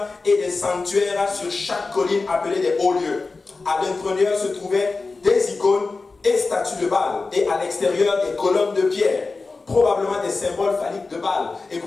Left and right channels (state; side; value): quieter; right; 3.9 dB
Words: et des sanctuaires sur chaque colline appelée des hauts lieux. À l'intérieur se trouvaient des icônes et statues de Baal, et à l'extérieur des colonnes de pierre, probablement des symboles phalliques de Baal.